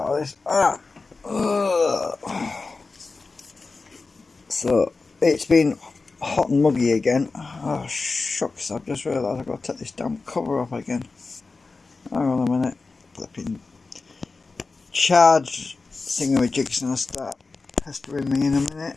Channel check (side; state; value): right; quieter; 4.0 dB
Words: this. So it's been hot and muggy again. Oh shucks! I've just realised I've got to take this damn cover off again. Hang on a minute. Flipping charge thingamajig's gonna start pestering me in a